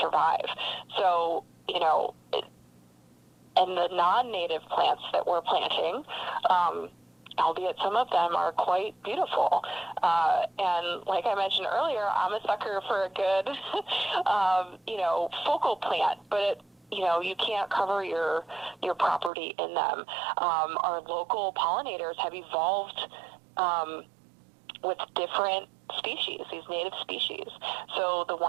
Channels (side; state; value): left; drops out; at 19.3 s